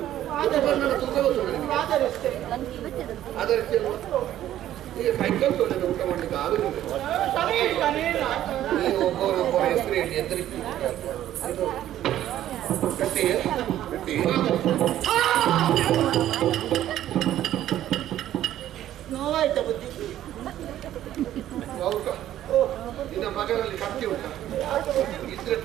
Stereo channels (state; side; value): quieter; left; 12.5 dB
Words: ನನ್ನ ತೂಕ ಗೊತ್ತೋಣ ನಿನಗೆ. ಆಧರಿಸ್ತೇನೆ. ಆಧರಿಸ್ತೇನೆ. ಈಗ ಕೈಕಲ್ ತೊಳೆದ ಊಟ ಮಾಡ್ಲಿಕ್ಕೆ ಆಗುದಿಲ್ಲ. ನೀವು ಒಬ್ಬರೊಬ್ಬರ ಹೆಸರು ಹೇಳಿ ಎದುರಿಸಿ ಕಟ್ಟಿ ಕಟ್ಟಿ ನೋವಾಯ್ತಾ ಬುದ್ಧಿ? ನಿನ್ನ ಮಗನಲ್ಲಿ ಕತ್ತಿ ಉಂಟ ಇದ್ರೆ